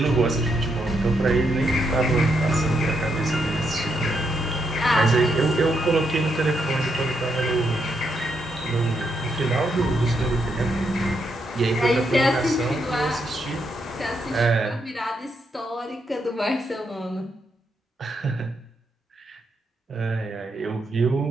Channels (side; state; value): both; normal; correlation 0.79